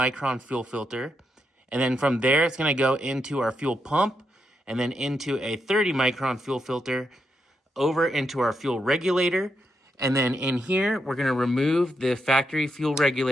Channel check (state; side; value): normal; both; correlation 0.82